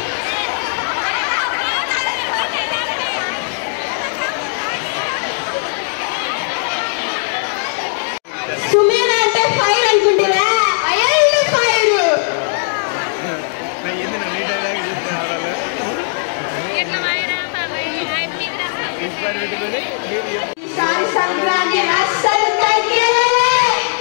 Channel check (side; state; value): right; silent; digital silence